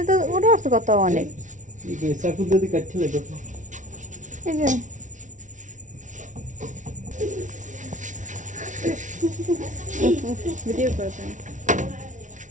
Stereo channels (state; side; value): late; left; 0.37 ms